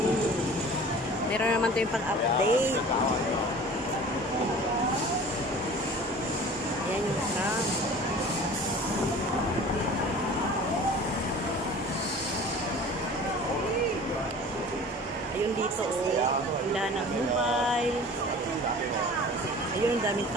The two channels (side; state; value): both; normal; correlation 0.43